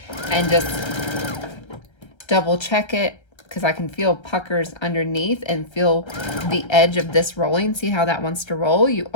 and just double check it because I can feel puckers underneath and feel the edge of this rolling. See how that wants to roll? You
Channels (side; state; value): right; late; 1.3 ms